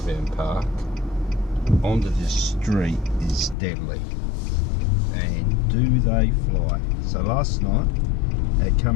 park onto this street is deadly, and do they fly. So last night they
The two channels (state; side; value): drops out; right; at 3.6 s